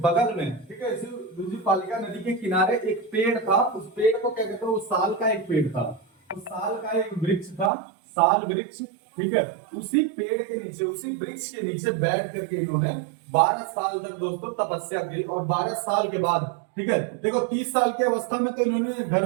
में, ठीक है, इसी रिजुपालिका नदी के किनारे एक पेड़ था, उस पेड़ को क्या कहते हैं, वो साल का एक पेड़ था, उस साल का एक वृक्ष था, साल वृक्ष, ठीक है, उसी पेड़ के नीचे, उसी वृक्ष के नीचे बैठ करके इन्होंने 12 साल तक दोस्तों तपस्या की। और 12 साल के बाद, ठीक है, देखो 30 साल की अवस्था में तो इन्होंने घर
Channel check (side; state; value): left; drops out; at 7.7 s